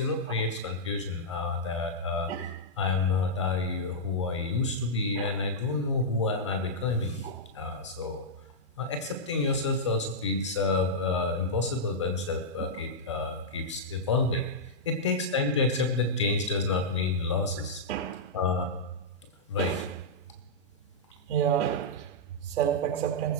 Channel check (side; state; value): both; normal; correlation -0.10